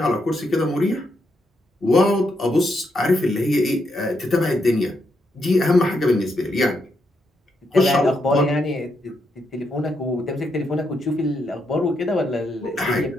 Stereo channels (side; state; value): both; normal; correlation 0.80